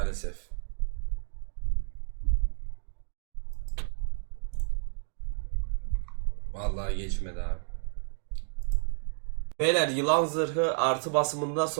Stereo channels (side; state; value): left; silent; digital silence